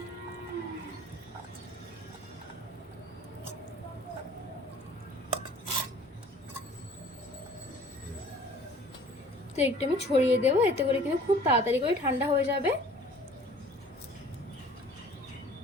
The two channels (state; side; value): normal; both; correlation 0.50